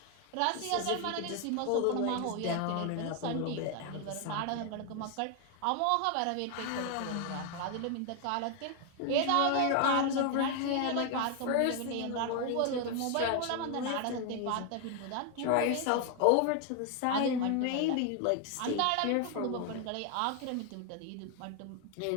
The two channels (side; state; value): both; different; correlation 0.01